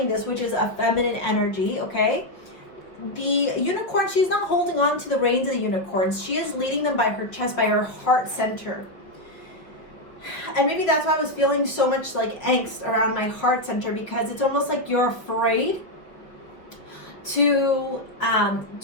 this, which is a feminine energy, okay? The unicorn, she's not holding on to the reins of the unicorns. She is leading them by her chest, by her heart center. And maybe that's why I was feeling so much like angst around my heart center, because it's almost like you're afraid to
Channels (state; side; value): late; right; 5.7 ms